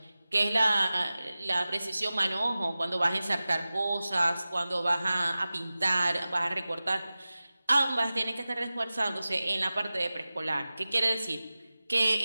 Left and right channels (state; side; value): inverted; both; correlation -0.96